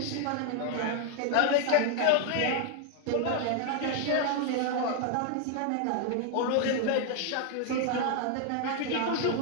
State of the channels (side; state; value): both; different; correlation 0.00